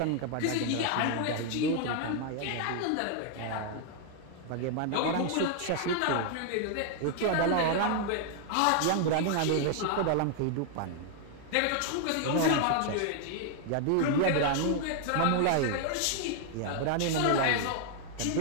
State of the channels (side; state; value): both; different; correlation 0.00